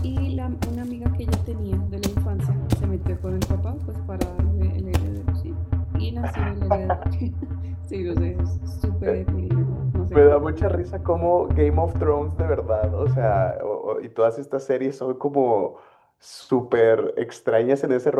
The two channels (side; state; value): both; identical; correlation 1.00